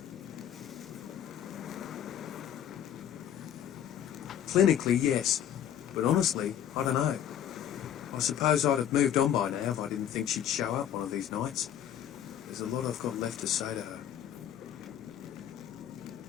Clinically, yes, but honestly, I don't know. I suppose I'd have moved on by now if I didn't think she'd show up one of these nights. There's a lot I've got left to say to her.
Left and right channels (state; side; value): quieter; right; 10.1 dB